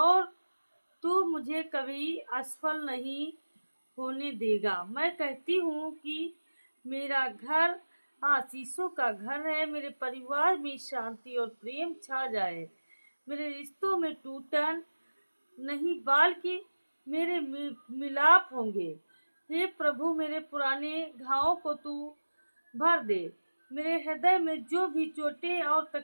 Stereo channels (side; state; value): both; inverted; correlation -1.00